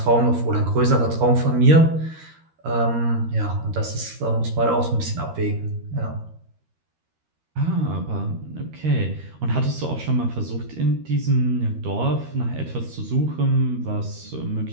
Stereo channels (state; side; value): late; left; 13 ms